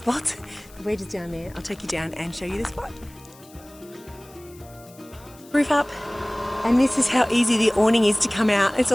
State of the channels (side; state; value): left; noise; hiss, 24 dB below the sound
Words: But we're just down there. I'll take you down and show you the spot. Roof up, and this is how easy the awning is to come out. It's